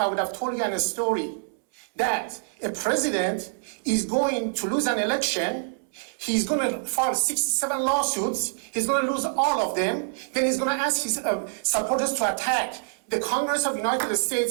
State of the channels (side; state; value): left; silent; 61 dB below the other